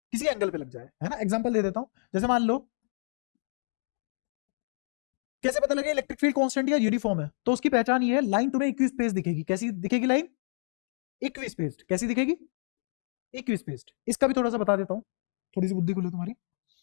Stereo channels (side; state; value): right; silent; digital silence